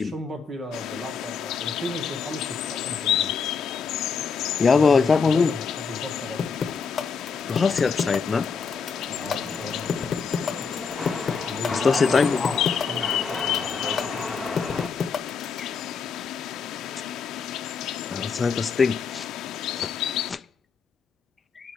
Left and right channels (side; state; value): right; quieter; 5.5 dB